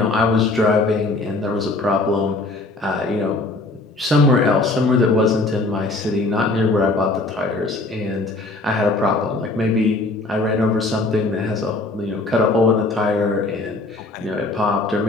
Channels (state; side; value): quieter; right; 3.1 dB